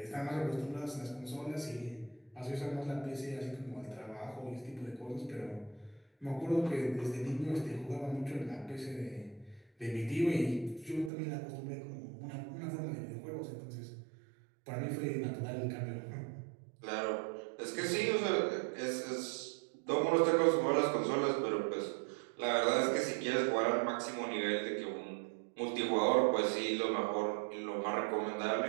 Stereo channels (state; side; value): drops out; left; at 11.1 s